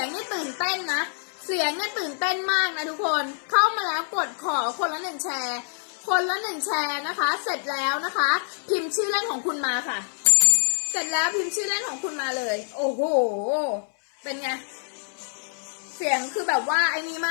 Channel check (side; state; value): right; silent; 61 dB below the other